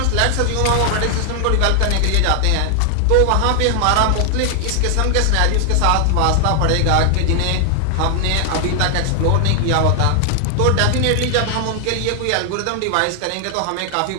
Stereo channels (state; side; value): different; both; correlation 0.00